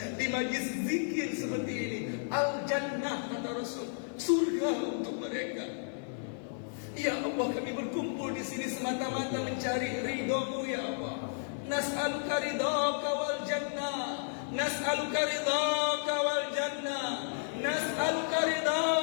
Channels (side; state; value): right; silent; 56 dB below the other